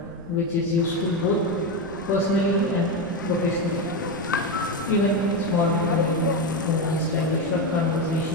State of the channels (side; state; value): right; noise; rumble, 20 dB below the sound